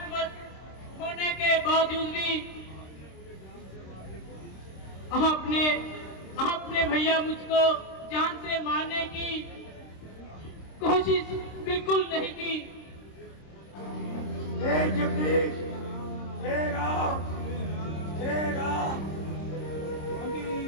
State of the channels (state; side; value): late; right; 26 ms